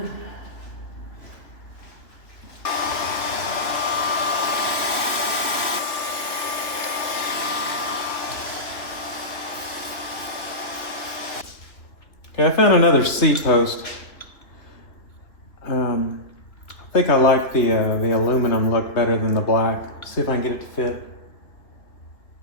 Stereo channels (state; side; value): late; right; 2.8 ms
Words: Okay, I found another seat post. I think I like the aluminum look better than the black. See if I can get it to fit.